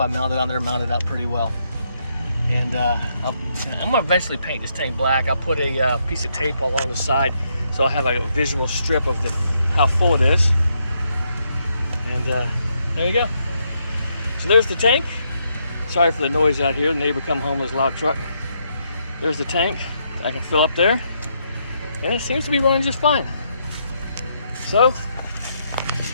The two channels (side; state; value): both; inverted; correlation -0.77